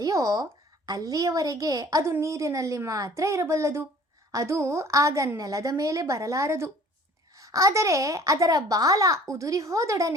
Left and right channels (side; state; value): both; normal; correlation 0.51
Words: ಅಲ್ಲಿಯವರೆಗೆ ಅದು ನೀರಿನಲ್ಲಿ ಮಾತ್ರ ಇರಬಲ್ಲದು. ಅದು ಆಗ ನೆಲದ ಮೇಲೆ ಬರಲಾರದು. ಆದರೆ ಅದರ ಬಾಲ ಉದುರಿ